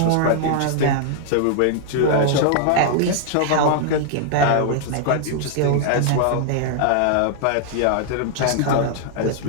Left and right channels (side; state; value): both; different; correlation -0.01